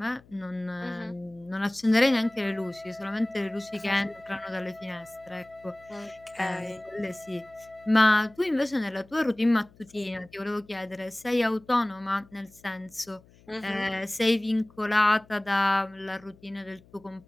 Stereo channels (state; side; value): noise; left; hum, 27 dB below the sound